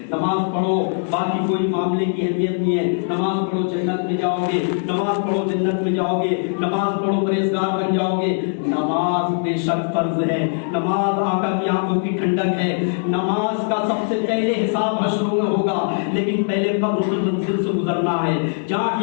نماز پڑھو باقی کوئی معاملے کی اہمیت نہیں ہے، نماز پڑھو جنت میں جاؤ گے، نماز پڑھو جنت میں جاؤ گے، نماز پڑھو پرہیزگار بن جاؤ گے۔ نماز بے شک فرض ہے، نماز آقا کی آنکھوں کی ٹھنڈک ہے، نماز کا سب سے پہلے حساب حشر میں ہوگا، لیکن پہلے قبر کی منزل سے گزرنا ہے جہاں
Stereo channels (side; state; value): right; silent; 65 dB below the other